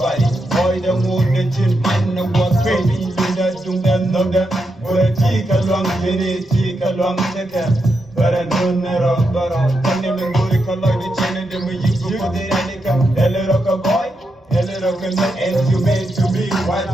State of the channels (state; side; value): normal; both; correlation 0.84